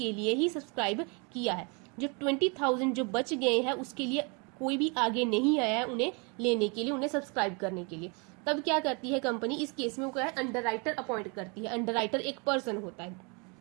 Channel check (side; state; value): left; quieter; 32.5 dB